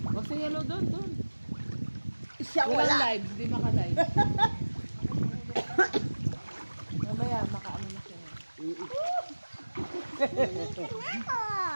Wag sa yellow doon. Siya Walang wala. live, hindi maka-live. Mamaya, maka-ano na siya.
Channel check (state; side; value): inverted; both; correlation -1.00